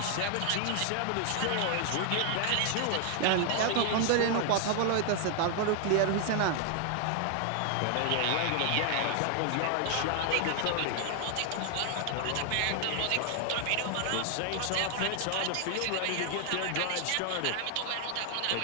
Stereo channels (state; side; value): different; both; correlation 0.00